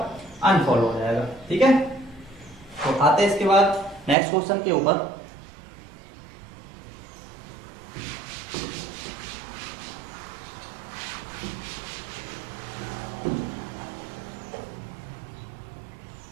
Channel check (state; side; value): drops out; left; at 4.2 s